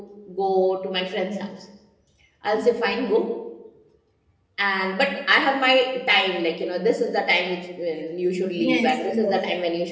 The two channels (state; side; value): identical; both; correlation 1.00